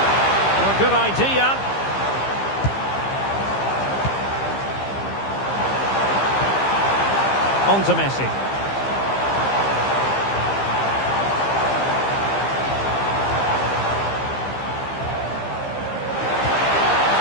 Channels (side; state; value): right; late; 15 ms